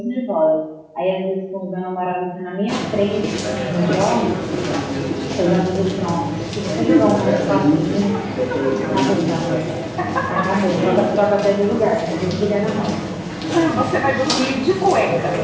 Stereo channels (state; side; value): identical; both; correlation 1.00